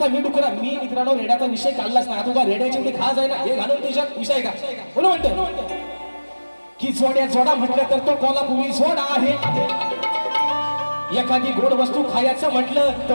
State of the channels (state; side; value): inverted; both; correlation -1.00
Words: मी डुकरा, मी मित्रांनो रेड्याचा विषय काढलाच नाही. आता रेड्याची एवढी खास आहे ना, हे घालून तुझ्यात विषय का बोल म्हणतो की जोडा म्हटलं तर तो कोल्हापुरी जोडा आहे. एखादी गोड वस्तू खायचं म्हटलं तर